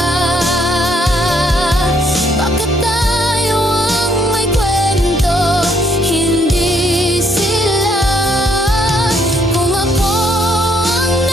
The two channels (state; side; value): normal; both; correlation 0.69